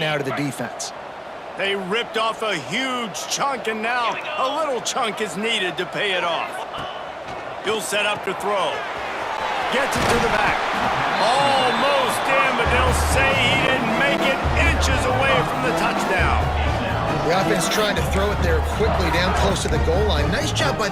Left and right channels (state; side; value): identical; both; correlation 1.00